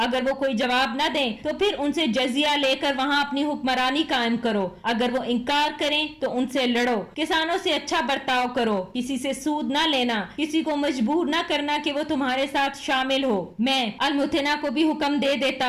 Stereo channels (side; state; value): both; identical; correlation 1.00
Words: اگر وہ کوئی جواب نہ دیں تو پھر ان سے جزیہ لے کر وہاں اپنی حکمرانی قائم کرو۔ اگر وہ انکار کریں تو ان سے لڑو۔ کسانوں سے اچھا برتاؤ کرو، کسی سے سود نہ لینا، کسی کو مجبور نہ کرنا کہ وہ تمہارے ساتھ شامل ہو۔ میں المتنا کو بھی حکم دے